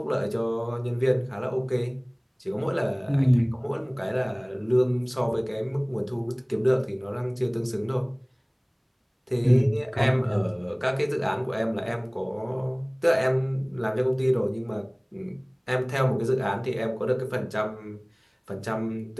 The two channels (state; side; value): identical; both; correlation 1.00